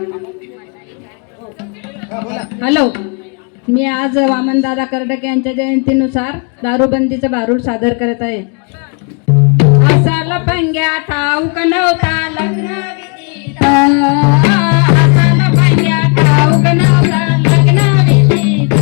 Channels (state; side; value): quieter; right; 37.1 dB